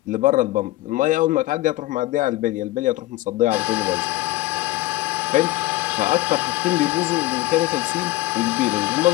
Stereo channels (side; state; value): right; quieter; 17.9 dB